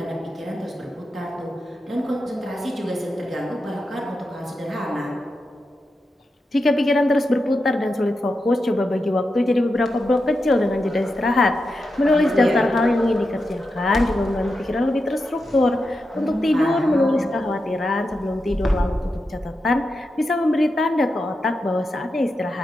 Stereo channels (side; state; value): both; normal; correlation 0.88